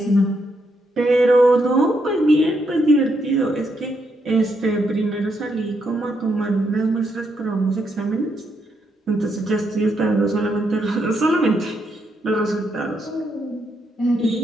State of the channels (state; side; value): normal; both; correlation 0.78